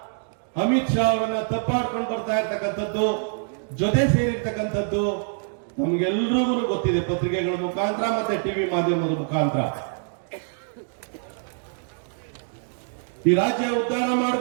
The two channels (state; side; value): silent; left; digital silence